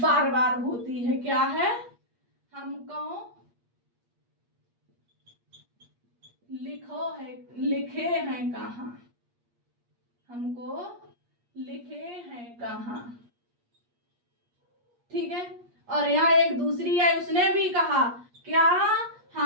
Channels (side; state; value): left; late; 8.4 ms